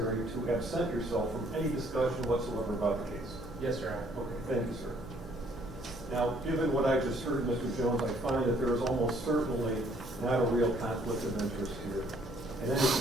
to absent yourself from any discussion whatsoever about the case? Yes, Your Honor. Okay, thank you, sir. Now, given what I just heard, Mr. Jones, I find that there is almost certainly not a real conflict of interest here. And any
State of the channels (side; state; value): left; noise; hum, 19 dB below the sound